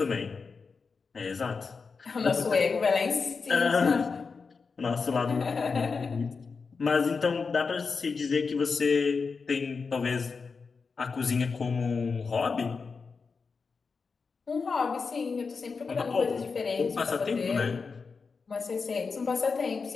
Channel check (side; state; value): right; quieter; 4.9 dB